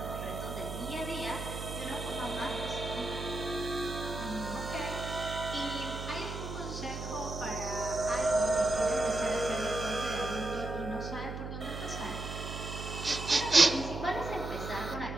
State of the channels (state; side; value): noise; right; hum, 6 dB below the sound